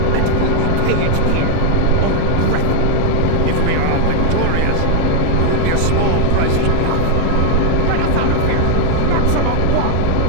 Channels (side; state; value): both; different; correlation 0.00